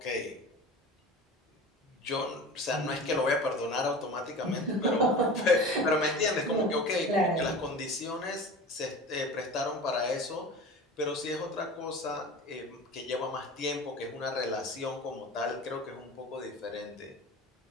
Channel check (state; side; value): normal; both; correlation 0.35